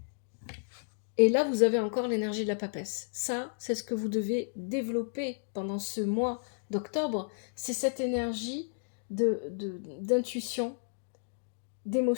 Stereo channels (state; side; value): silent; right; digital silence